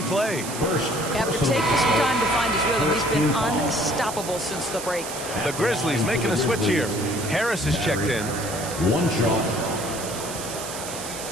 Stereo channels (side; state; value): right; noise; hiss, 9 dB below the sound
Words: play. After taking some time to find his rhythm, he's been unstoppable since the break. The Grizzlies making a switch here. Harris is checked in. 1 shot.